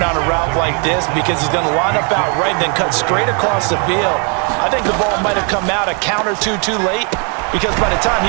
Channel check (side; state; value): left; quieter; 37.4 dB